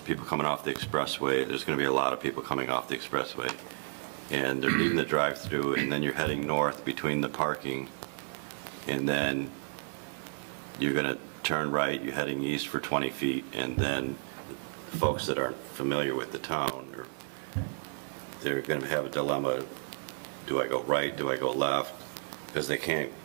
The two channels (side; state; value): left; silent; 56 dB below the other